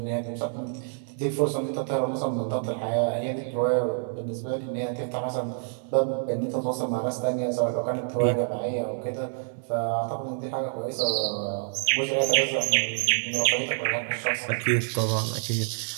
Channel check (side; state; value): left; silent; digital silence